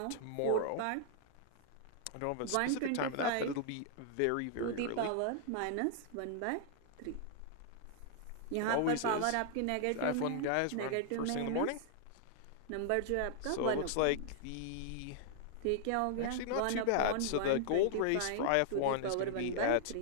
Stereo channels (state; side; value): different; both; correlation -0.01